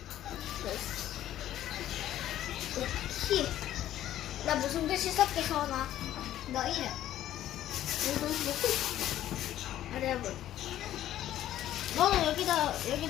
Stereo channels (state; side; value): quieter; right; 12.6 dB